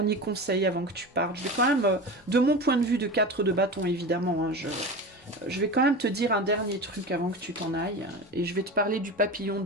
conseil avant que tu partes. Je vais quand même, de mon point de vue de 4 de bâton évidemment, hein, je vais quand même te dire un dernier truc avant que tu t'en ailles. Et je vais te parler du papillon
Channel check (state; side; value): normal; both; correlation 0.28